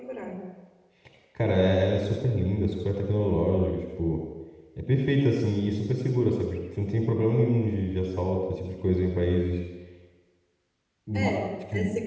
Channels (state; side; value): identical; both; correlation 1.00